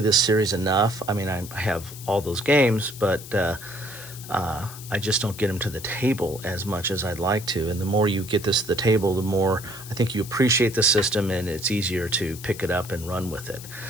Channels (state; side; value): noise; left; hiss, 14 dB below the sound